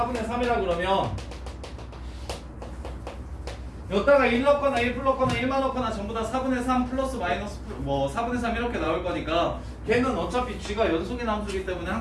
3이라 그러면 여기다가 1 넣거나 1 풀 넣거나 1만 넣거나 전부 다 4분의 3 플러스 마이너스 뭐 4분의 3 이렇게 나올 거니까 걔는 어차피 g가 연속인 함수이기 때문에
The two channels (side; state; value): both; identical; correlation 1.00